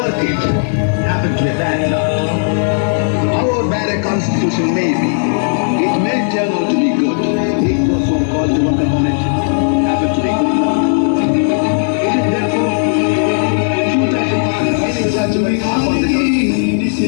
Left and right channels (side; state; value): right; silent; digital silence